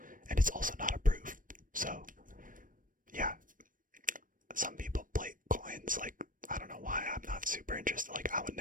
And it's also not approved. So, yeah. Some people plate coins, like, I don't know why, I'm not super interested. Like, I would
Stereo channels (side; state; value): left; late; 0.39 ms